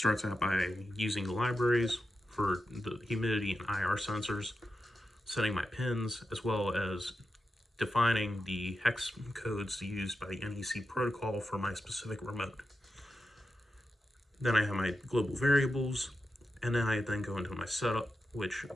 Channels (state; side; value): normal; both; correlation 0.89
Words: out by using the libraries for the humidity and IR sensors, setting my pins, as well as defining the hex codes used by the NEC protocol for my specific remote. Then I have my global variables, and then I go into my setup, which